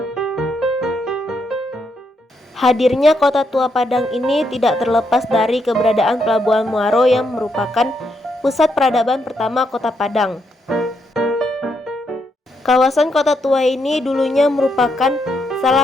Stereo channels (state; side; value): normal; both; correlation 0.78